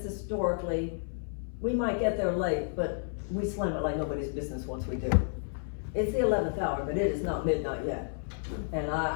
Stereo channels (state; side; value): silent; right; 57 dB below the other